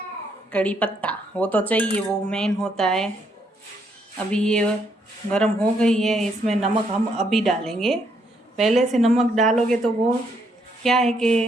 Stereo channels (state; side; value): normal; both; correlation 0.73